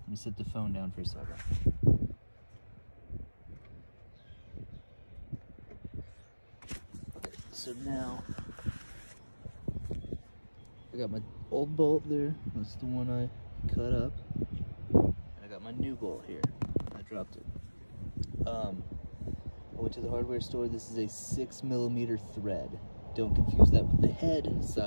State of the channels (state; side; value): inverted; both; correlation -1.00